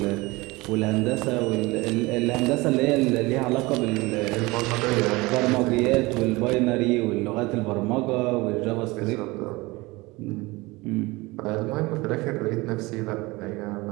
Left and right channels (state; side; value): quieter; left; 22.5 dB